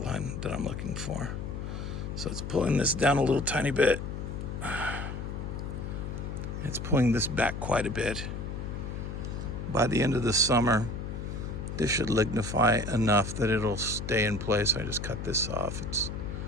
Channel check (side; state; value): left; noise; hum, 5 dB below the sound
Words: that I'm looking for. So it's pulling this down a little tiny bit. It's pulling this back quite a bit. By the end of the summer, this should lignify enough that it'll stay in place. I just cut this off.